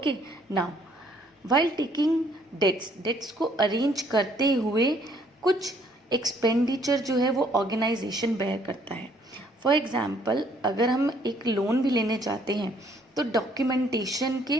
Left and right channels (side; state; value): both; normal; correlation 0.64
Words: now while taking debts को अरेंज करते हुए कुछ एक्सपेंडिचर जो है वो ऑर्गेनाइजेशन बेयर करता है. फॉर एग्जाम्पल, अगर हम एक लोन भी लेने चाहते हैं तो डॉक्यूमेंटेशन के